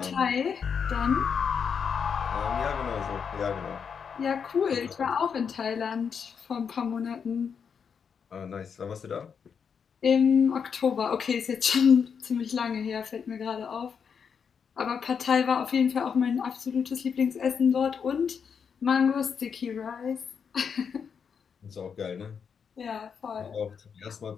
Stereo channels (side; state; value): right; quieter; 6.7 dB